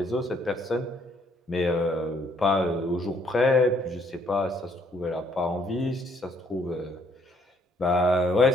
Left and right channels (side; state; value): both; normal; correlation 0.67